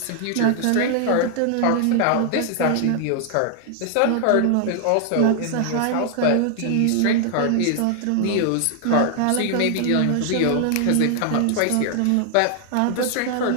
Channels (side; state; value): both; different; correlation 0.00